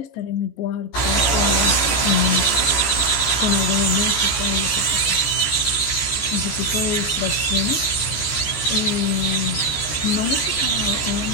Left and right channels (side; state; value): right; late; 14 ms